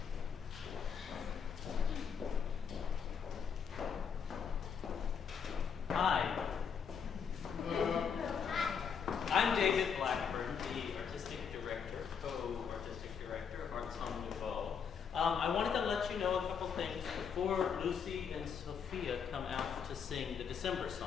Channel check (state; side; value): quieter; right; 6.9 dB